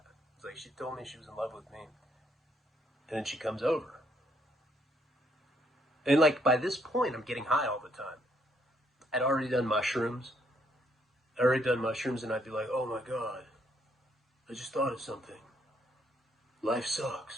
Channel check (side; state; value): both; normal; correlation 0.70